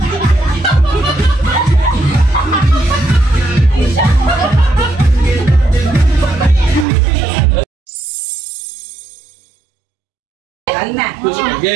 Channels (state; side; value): drops out; left; at 6.9 s